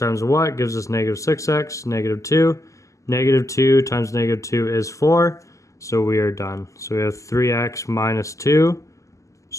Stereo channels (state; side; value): late; right; 0.16 ms